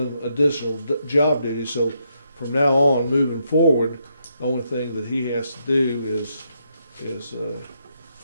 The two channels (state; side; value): inverted; both; correlation -0.78